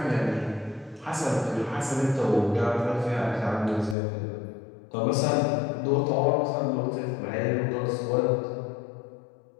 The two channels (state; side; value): drops out; right; at 4.0 s